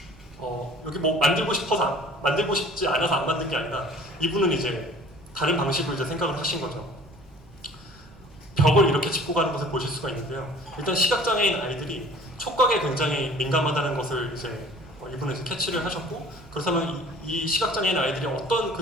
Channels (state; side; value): normal; both; correlation 0.49